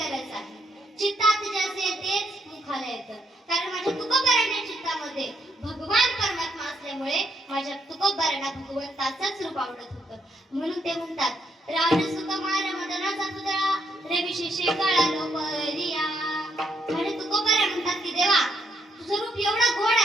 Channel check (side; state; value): both; normal; correlation 0.75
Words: आहे. चित्तात जे असेल तेच मुखाला येतं. कारण माझ्या तुकोबारांच्या चित्तामध्ये भगवान परमात्मा असल्यामुळे माझ्या तुकोबारांना भगवंताचंच रूप आवडत होतं. म्हणून ते म्हणतात, राज सुकुमार मदनाचा पुतळा रविशी शेकाळा लोपरिया. आणि तुकोबारा म्हणतात की देवा तुझं रूप एवढं गोड